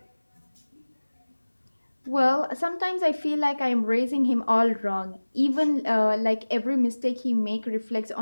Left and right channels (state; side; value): inverted; both; correlation -1.00